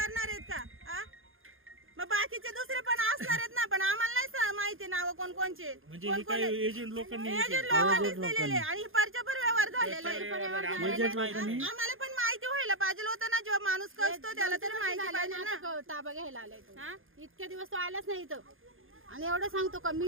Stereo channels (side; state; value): left; late; 0.60 ms